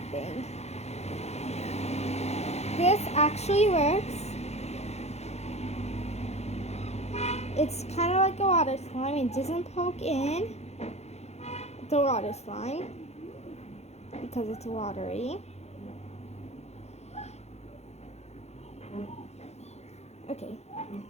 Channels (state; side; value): late; right; 0.31 ms